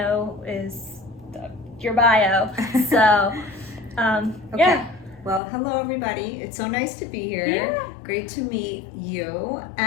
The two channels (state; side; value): drops out; right; at 5.4 s